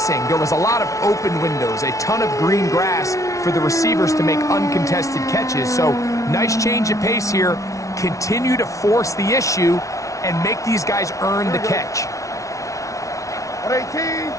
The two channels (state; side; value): late; right; 0.16 ms